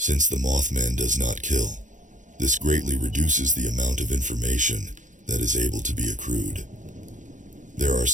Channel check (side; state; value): left; late; 0.36 ms